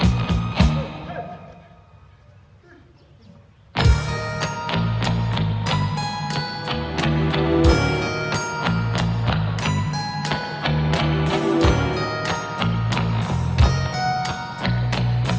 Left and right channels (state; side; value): identical; both; correlation 1.00